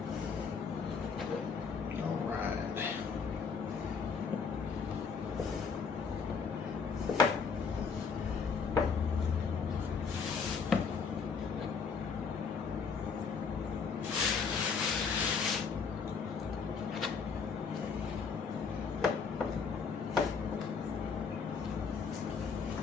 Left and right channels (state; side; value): quieter; right; 5.6 dB